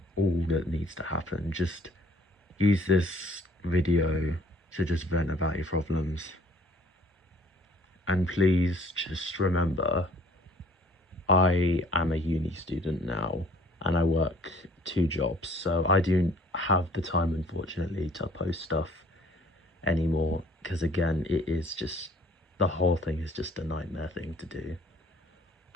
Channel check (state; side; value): normal; both; correlation 0.56